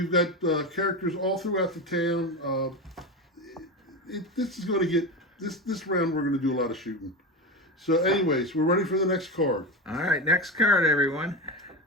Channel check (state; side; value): normal; both; correlation 0.20